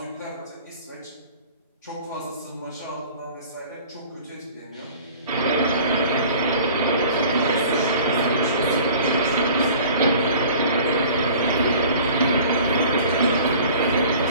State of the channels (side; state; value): both; inverted; correlation -0.46